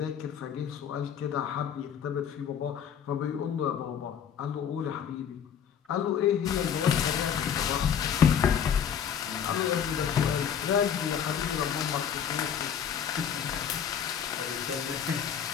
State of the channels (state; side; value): quieter; right; 8.2 dB